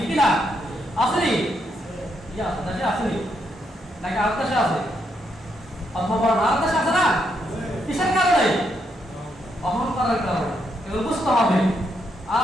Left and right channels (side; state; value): both; normal; correlation 0.78